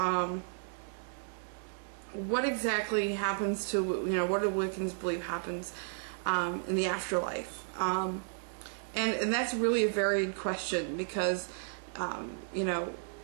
what exactly happens to, what do Wiccans believe happens in the afterlife? And that's really a varied question because,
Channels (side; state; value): left; silent; digital silence